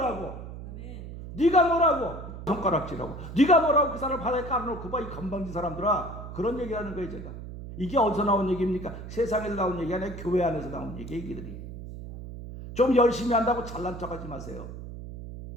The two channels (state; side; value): noise; right; hum, 11 dB below the sound